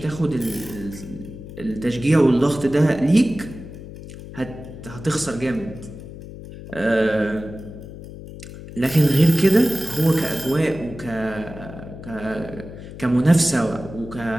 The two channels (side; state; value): left; noise; hum, 13 dB below the sound